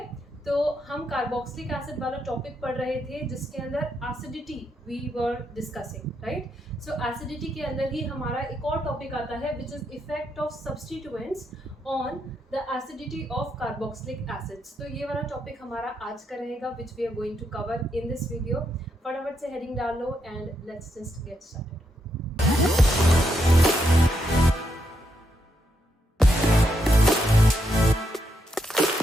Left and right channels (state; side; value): normal; both; correlation 0.80